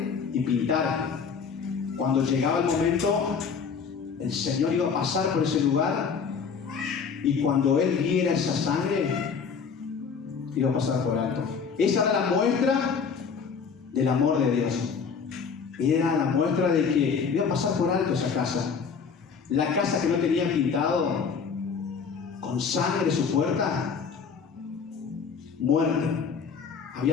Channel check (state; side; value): quieter; right; 5.9 dB